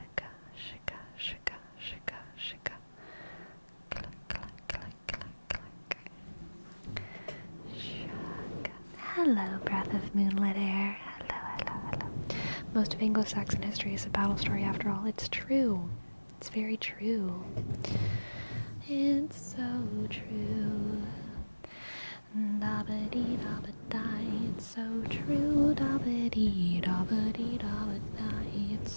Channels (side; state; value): both; inverted; correlation -1.00